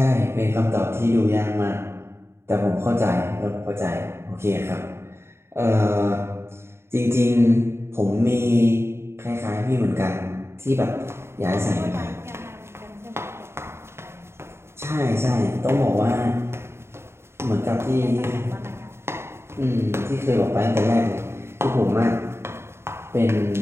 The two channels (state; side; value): late; left; 0.12 ms